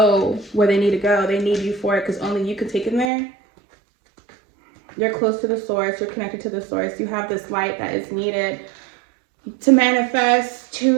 where they need to go. They need you for it because only you can take them there. You're close to the source. You're connected to the source. You have this light that is needed to manifest,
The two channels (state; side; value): drops out; left; at 3.1 s